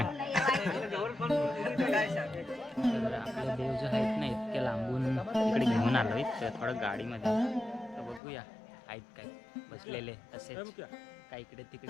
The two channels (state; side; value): drops out; right; at 8.2 s